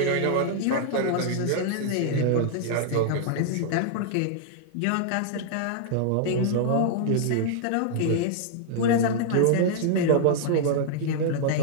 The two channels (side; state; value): both; different; correlation -0.01